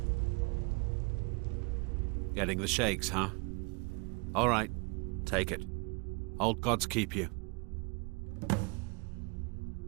Getting the shakes, huh? All right, take it. Old gods keep you.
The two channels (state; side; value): quieter; left; 30.2 dB